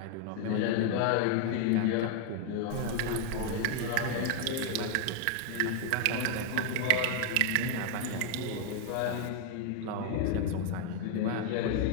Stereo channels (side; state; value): both; different; correlation 0.00